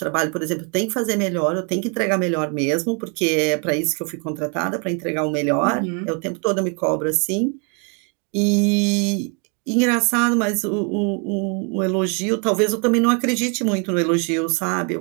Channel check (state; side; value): quieter; left; 35.7 dB